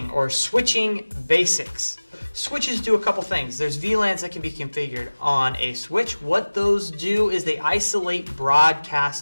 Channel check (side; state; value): both; inverted; correlation -1.00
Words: or switching basics. Switches do a couple things. There's VLANs that can be configured on a switch. What those do is they isolate